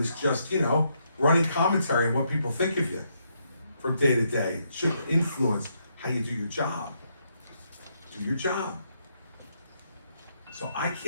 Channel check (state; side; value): inverted; both; correlation -0.77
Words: is just, running commentary on what people think of you from day to day. It should influence how you do your job. Do your job. So I